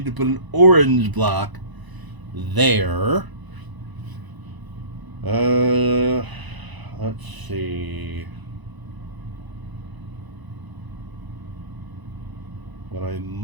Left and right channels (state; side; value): late; left; 1.0 ms